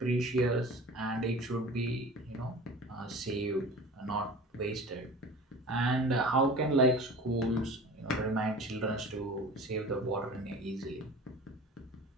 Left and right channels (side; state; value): both; normal; correlation 0.39